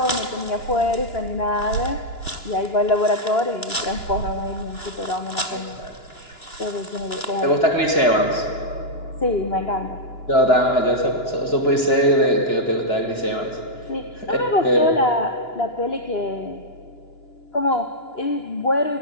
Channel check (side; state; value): right; late; 2.9 ms